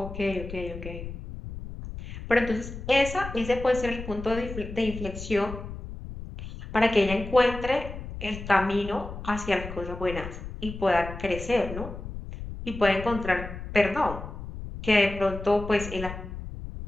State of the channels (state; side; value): noise; left; rumble, 10 dB below the sound